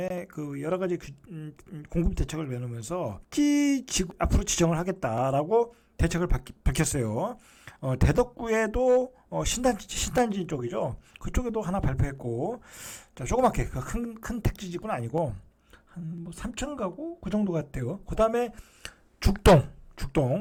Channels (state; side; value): identical; both; correlation 1.00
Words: 그 여러 가지 공급 대책을 내놓으면서 앞으로 지정을 하겠다라고 대책을 밝혔어요. 대덕구에도 신단지 쪽이죠. 그쪽에도 하나 발표했고, 자, 조그맣게 큰 택지지구는 아니고 한 뭐 3천 가구 그 정도 같아요. 그 다음에